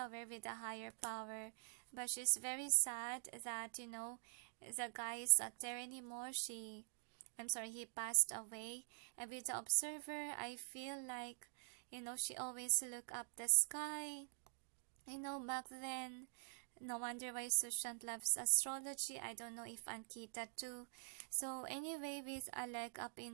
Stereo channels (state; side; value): silent; left; digital silence